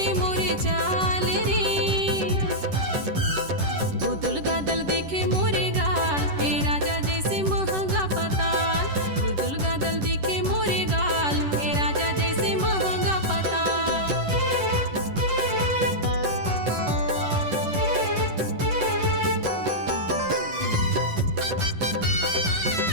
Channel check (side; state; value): left; late; 10 ms